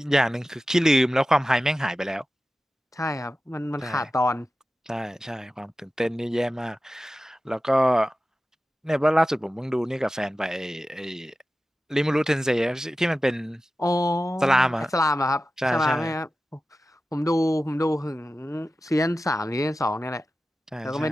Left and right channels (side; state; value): both; normal; correlation 0.94